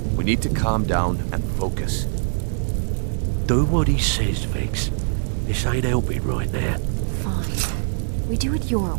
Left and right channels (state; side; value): silent; left; 57 dB below the other